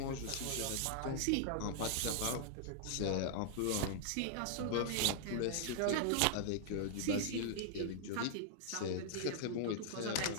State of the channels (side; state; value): both; different; correlation -0.01